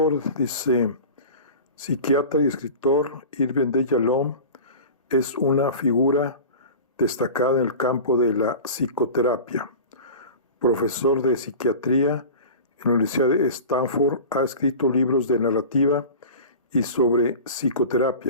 Dice, psiquiatra y escritor Irving de Yalom es una figura destacada en el campo de la psicoterapia. Profesor de psiquiatría en la Universidad de Stanford, ha escrito libros de narrativa y sobre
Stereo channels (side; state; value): both; inverted; correlation -0.35